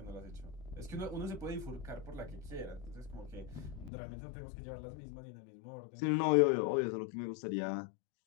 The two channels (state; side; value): drops out; right; at 3.9 s